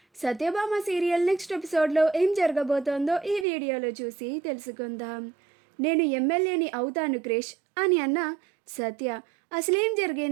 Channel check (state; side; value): drops out; left; at 3.5 s